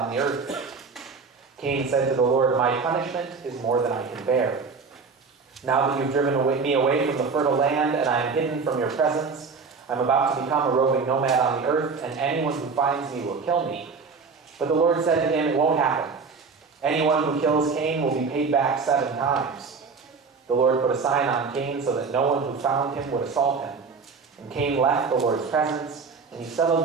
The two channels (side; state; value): left; quieter; 4.9 dB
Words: the earth. Cain said to the Lord, My punishment is more than I can bear. Now that you've driven me away from the fertile land, and I am hidden from your presence, I'm about to become a roving nomad on the earth, and anyone who finds me will kill me. But the Lord said to him, It won't happen. Anyone who kills Cain will be paid back 7 times. The Lord put a sign on Cain so that no one who found him would assault him. And Cain left the Lord's presence, and he settled